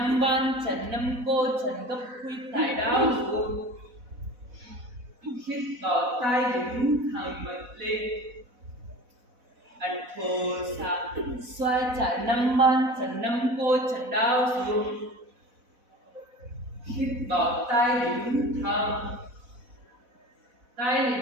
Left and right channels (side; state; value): left; late; 4.1 ms